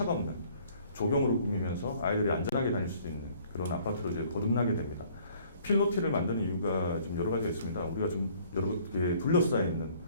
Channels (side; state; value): both; inverted; correlation -0.58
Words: 없는 조경으로 꾸미면서 아이들이 안전하게 다닐 수 있는 그런 아파트로 이제 거듭나게 됩니다. 필로티를 만드는 이유가 좀 여러 가지가 있습니다. 우리가 좀 여러 개 둘러싸여 있는